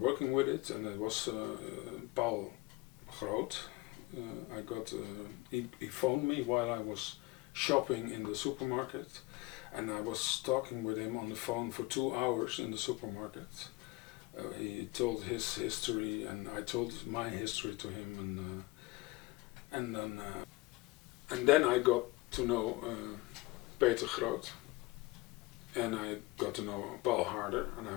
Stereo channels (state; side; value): quieter; right; 22.0 dB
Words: with it, and it was Paul Groot. He phoned me while I was shopping in the supermarket, and I was talking with him on the phone for 2 hours in the supermarket. He told his history, and I told my history to him, and then I got to know Peter Groot, and I got to know Paul Harder, and I